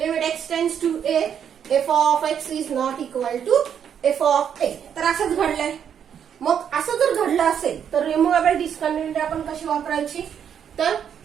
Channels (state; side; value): quieter; left; 8.4 dB